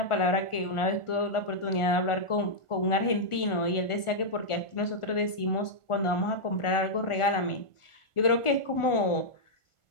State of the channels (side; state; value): right; late; 1.4 ms